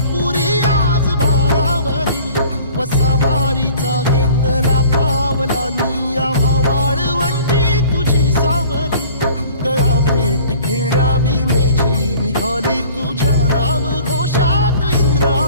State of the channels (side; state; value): both; inverted; correlation -0.49